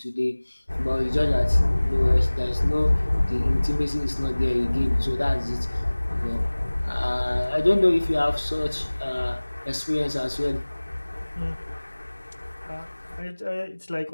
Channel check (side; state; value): both; inverted; correlation -1.00